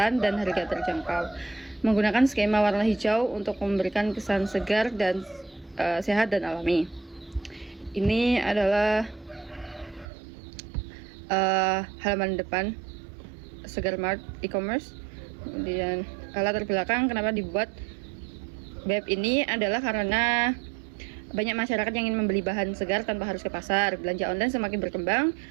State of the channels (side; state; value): left; drops out; at 10.1 s